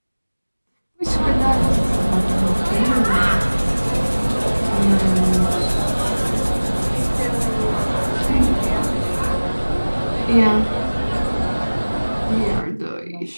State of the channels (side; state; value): both; inverted; correlation -1.00